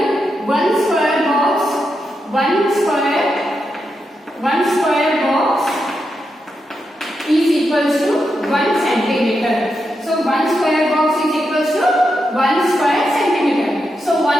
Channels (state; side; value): normal; both; correlation 0.85